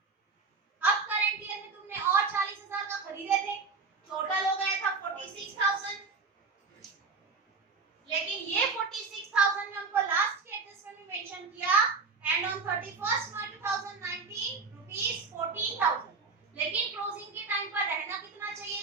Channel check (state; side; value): quieter; left; 4.5 dB